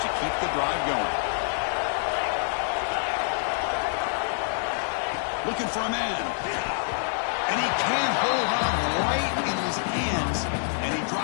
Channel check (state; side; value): silent; right; 57 dB below the other